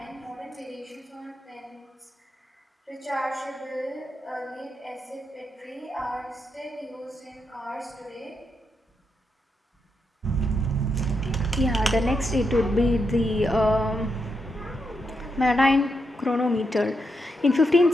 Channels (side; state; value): both; normal; correlation 0.83